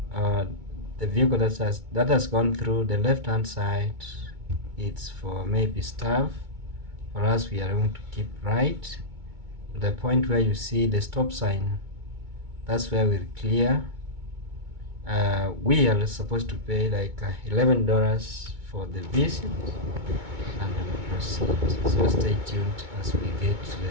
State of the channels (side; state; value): left; late; 2.2 ms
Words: The vehicle that has gone through the left hand side, it's for maybe staff. For us, we are going to keep right to the point where you see the stop sign. That's where we'll clear. We are supposed to pay like $11 for the visit, and we'll proceed. So stay tuned as we get to